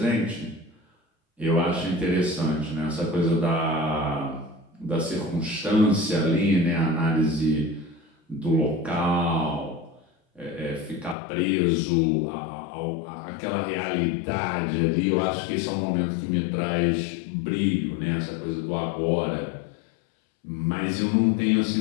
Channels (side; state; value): right; drops out; at 11.2 s